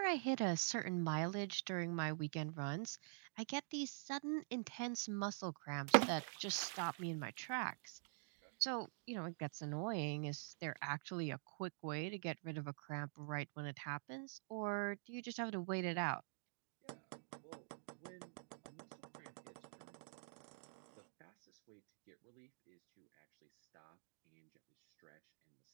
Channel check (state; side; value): silent; left; digital silence